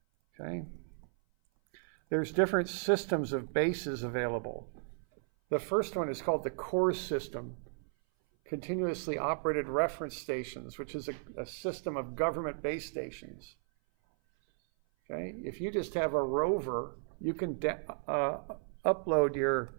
Okay? There's different systems of bases available. The first one is called the core system. continuously operated reference stations, which is a system of government base stations. Okay? If you just have a rover, you can upload your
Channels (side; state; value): left; silent; 55 dB below the other